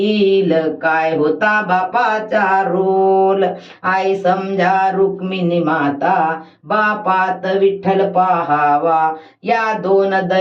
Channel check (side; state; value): both; identical; correlation 1.00